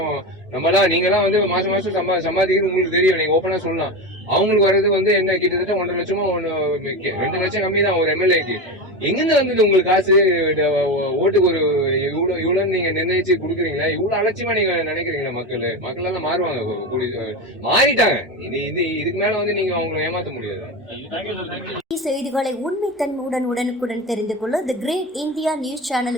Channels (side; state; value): both; normal; correlation 0.21